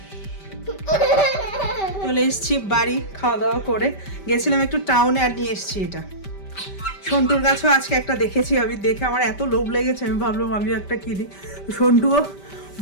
চলে এসছি বাড়ি, খাওয়া দাওয়া করে গেছিলাম একটু টাউনে, আর নিয়ে এসছি এটা। সন্টুর গাছও আজকে একটা দেখেছি আমি, দেখে আমার এত লোভ লেগেছে, আমি ভাবলাম আমিও একটা কিনি। সন্টুও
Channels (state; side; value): late; right; 5.1 ms